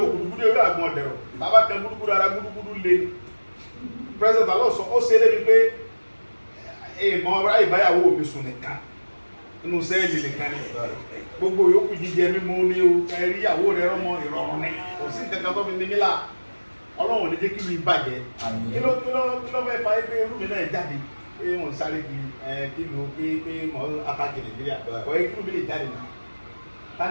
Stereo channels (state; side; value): inverted; both; correlation -1.00